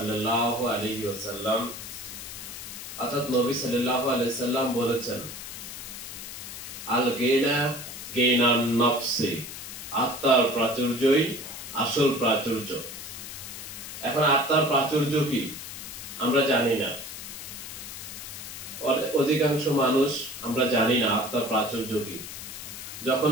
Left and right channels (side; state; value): left; noise; hiss, 10 dB below the sound